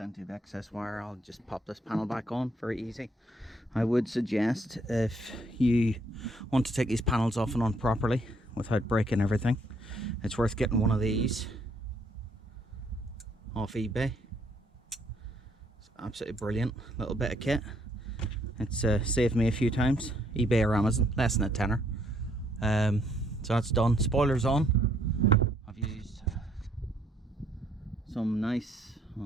of excess wire. I'll just pop this panel back on, very easy. I would suggest, if you want to take these panels off and on properly without breaking everything, it's worth getting one of these off eBay. It's absolutely brilliant little bit of kit. It's saved me a few times. eBay or Amazon, less than a tenner. So that's done. Spoiler's on. I've used some nice, I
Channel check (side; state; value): both; normal; correlation 0.68